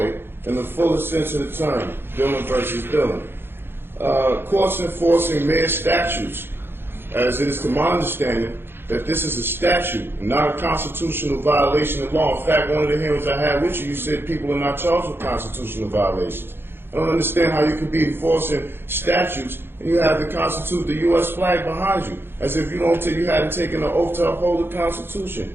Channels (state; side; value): late; left; 0.11 ms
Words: in the fullest sense of the term, Dillon versus Dillon. Courts enforcing mere statutes, as it is to my understanding, that this is a statute and not a constitutional violation of law. In fact, one of the hearings I had with you, you said people are not charged with constitutional violations. I don't understand how you could be enforcing statutes and you have the U.S. flag behind you, as if you hadn't taken an oath to uphold the Constitution.